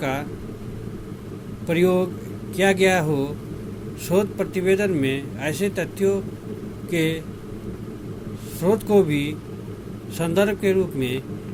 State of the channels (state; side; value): identical; both; correlation 1.00